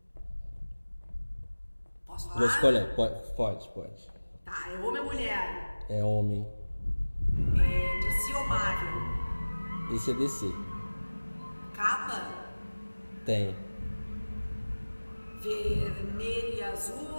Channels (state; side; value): inverted; both; correlation -1.00